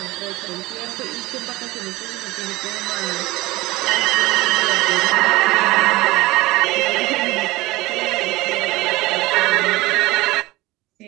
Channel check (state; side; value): quieter; left; 19.9 dB